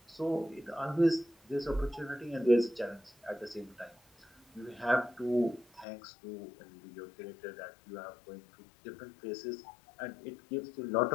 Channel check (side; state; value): right; drops out; at 5.9 s